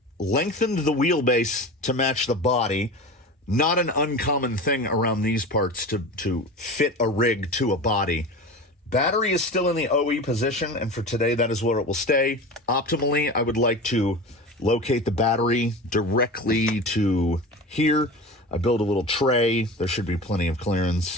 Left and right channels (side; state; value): both; normal; correlation 0.31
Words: lengthened the wheelbase to match the body. Not an uncommon thing around these parts to fit a rig to a body. Battery is still in the OE position, and for today, that is where it will stay. Optimally, I would like to locate the battery directly to here. I build a little tray. There should be plenty of